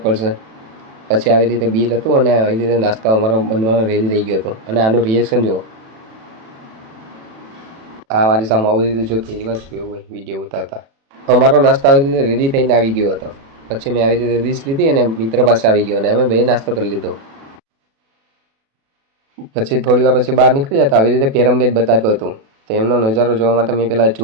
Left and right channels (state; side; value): late; left; 36 ms